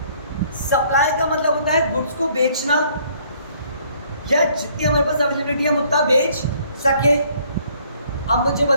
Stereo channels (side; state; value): both; inverted; correlation -0.62